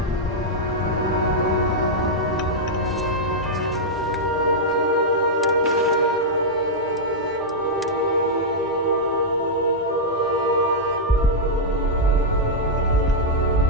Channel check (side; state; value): both; normal; correlation -0.06